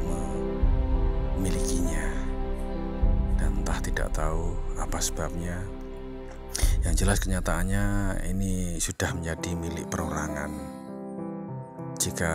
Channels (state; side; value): identical; both; correlation 1.00